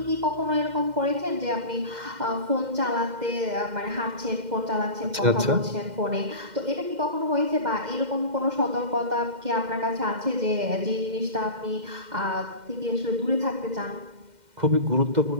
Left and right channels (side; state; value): left; late; 2.1 ms